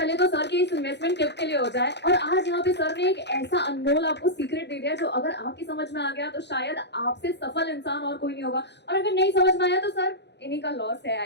तो सर के इस इन्वेस्टमेंट टिप के लिए हो जाए। और आज यहाँ पे सर ने एक ऐसा अनमोल आपको सीक्रेट दे दिया जो अगर आपकी समझ में आ गया तो शायद आपसे सफल इंसान और कोई नहीं होगा, और अगर नहीं समझ में आया तो सर इन्हीं का लॉस है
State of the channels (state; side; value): late; right; 0.50 ms